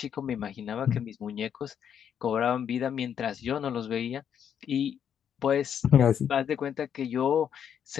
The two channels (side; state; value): right; quieter; 8.5 dB